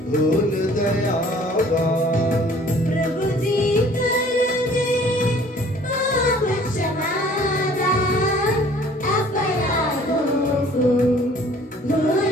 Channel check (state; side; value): normal; both; correlation 0.53